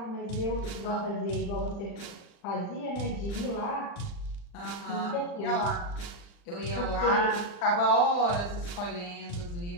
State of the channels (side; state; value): right; late; 40 ms